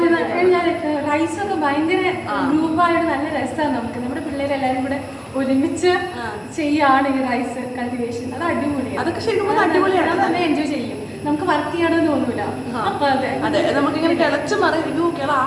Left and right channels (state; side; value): identical; both; correlation 1.00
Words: റൈസ് ഒക്കെ ഭയങ്കര ഗ്രൂപ്പായിട്ട് നല്ല രസമാണ്. നമുക്ക് നമ്മുടെ പിള്ളേരെല്ലാവരും കൂടെ ഒരുമിച്ച് ചെയ്യാണ് ഈ റൈസ് കൾട്ടിവേഷൻ. അത് അടിപൊളിയാണ്. അതൊക്കെ ശരിക്കും അടിപൊളിയാണ്. നല്ല എൻജോയ് ചെയ്യും. നമുക്ക് വർക്ക് ചെയ്യണമെന്ന് തോന്നൂല. അതെ, നമുക്കിങ്ങനെ കിളച്ച് മറിയുക ആ